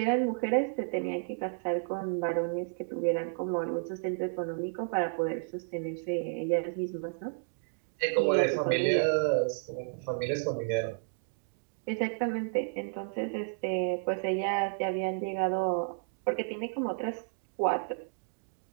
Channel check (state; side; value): silent; left; digital silence